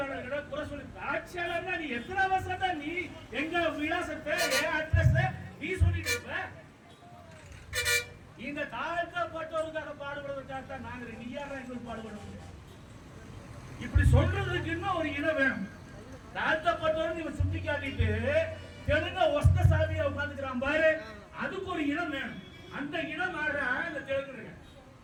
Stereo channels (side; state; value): both; identical; correlation 1.00